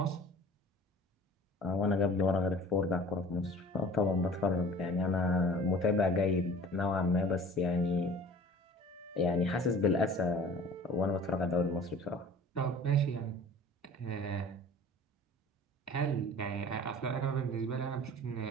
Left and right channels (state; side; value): normal; both; correlation 0.45